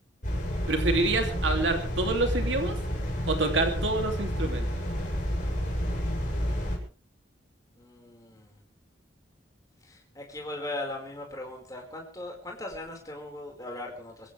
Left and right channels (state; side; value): normal; both; correlation 0.52